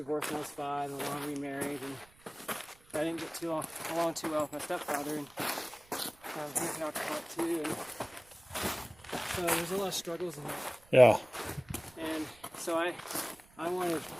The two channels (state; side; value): noise; right; rumble, 27 dB below the sound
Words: when I was 5, and long remarried, and I didn't get along too well with my stepfather, and he's an alcoholic too. And so there's a lot of struggles in that. Yeah. And so I wanted